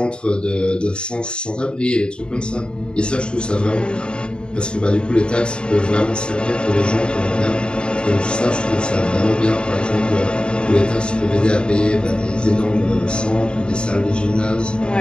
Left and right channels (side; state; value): right; late; 0.051 ms